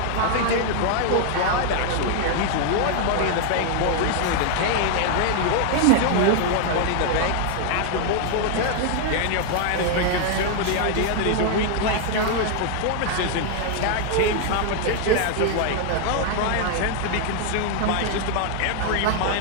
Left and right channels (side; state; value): both; different; correlation 0.00